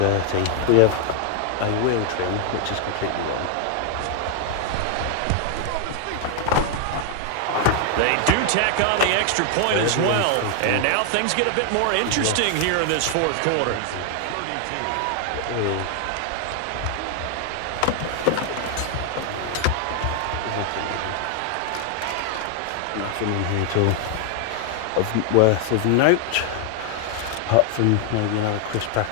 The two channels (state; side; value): different; both; correlation 0.00